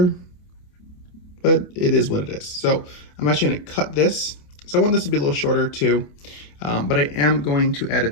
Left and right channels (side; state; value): right; late; 28 ms